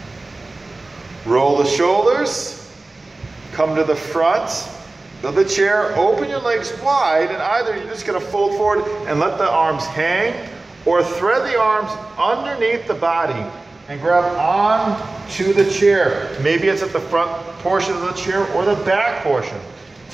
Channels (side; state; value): left; quieter; 3.1 dB